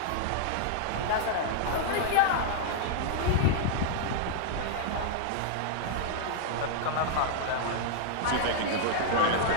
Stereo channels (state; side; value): different; both; correlation -0.01